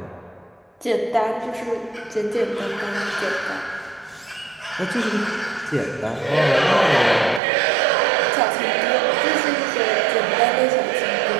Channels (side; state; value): left; drops out; at 7.4 s